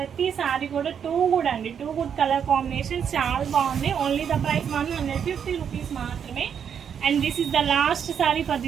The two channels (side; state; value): left; quieter; 7.8 dB